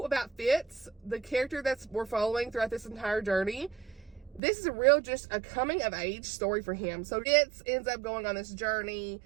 Fitz, the character we're following throughout this entire journey, this is just a coming of age story for him. So Fitz ends up going on this journey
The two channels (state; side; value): drops out; left; at 4.4 s